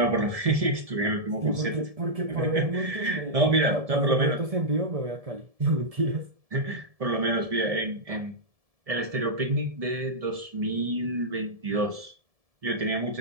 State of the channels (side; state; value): left; late; 1.7 ms